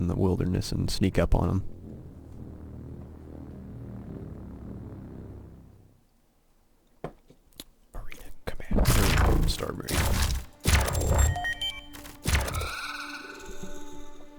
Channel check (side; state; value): both; identical; correlation 1.00